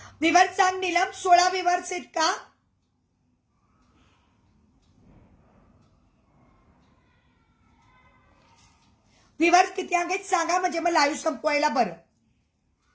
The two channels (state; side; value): identical; both; correlation 1.00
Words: विवर्स सांग नीलम. 16 विवर्स आहेत का? विवर्स किती आहेत सांगा, म्हणजे मग लाईव्ह संपवायला बरं.